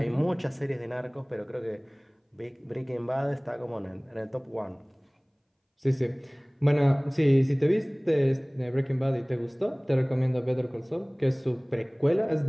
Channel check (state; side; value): identical; both; correlation 1.00